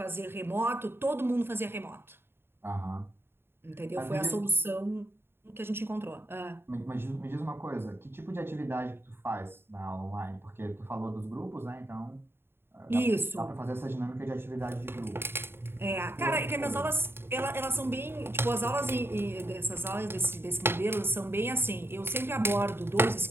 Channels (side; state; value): left; late; 0.11 ms